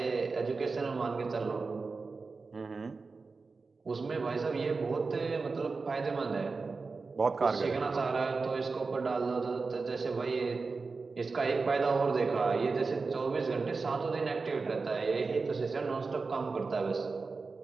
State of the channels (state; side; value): quieter; left; 4.2 dB